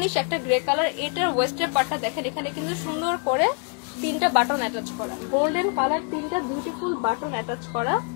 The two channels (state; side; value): quieter; right; 38.8 dB